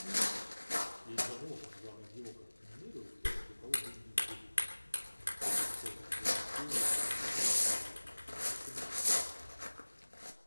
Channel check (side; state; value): both; inverted; correlation -1.00